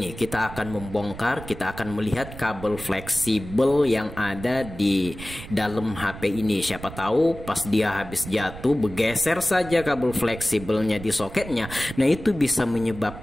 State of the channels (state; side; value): noise; right; rumble, 13 dB below the sound